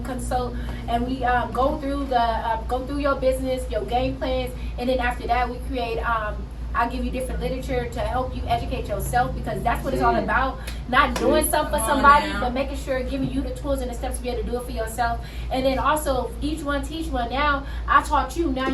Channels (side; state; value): both; identical; correlation 1.00